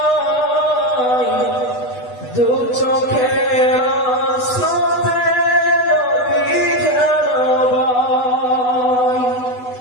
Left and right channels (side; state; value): right; late; 8.1 ms